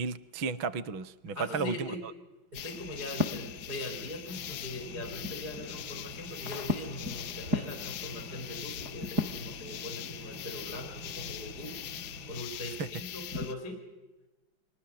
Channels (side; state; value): left; late; 5.0 ms